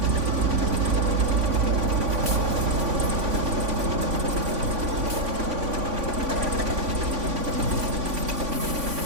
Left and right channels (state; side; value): late; left; 3.5 ms